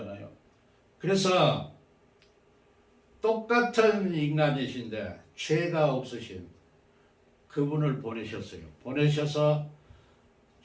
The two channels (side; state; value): both; identical; correlation 1.00